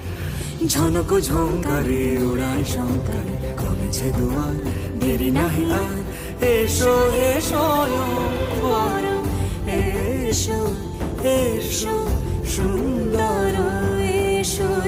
ঝনক ঝঙ্কারে উড়ায় শঙ্কার কমেছে দুয়ার দেরি নাহি আর। এসো হে স্বয়ং পরম এসো এসো সুন্দর এসো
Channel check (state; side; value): identical; both; correlation 1.00